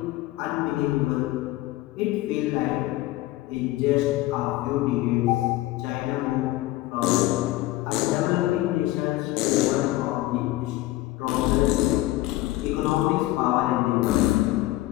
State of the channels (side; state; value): right; quieter; 17.1 dB